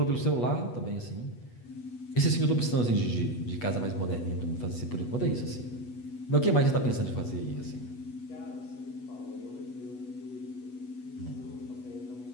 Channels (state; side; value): late; right; 8.2 ms